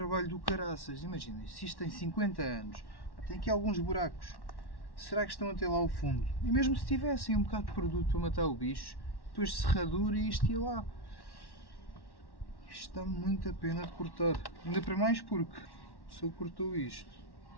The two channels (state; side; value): late; right; 1.1 ms